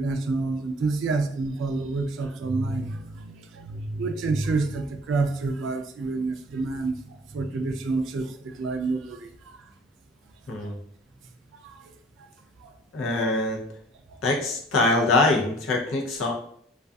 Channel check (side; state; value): both; normal; correlation 0.53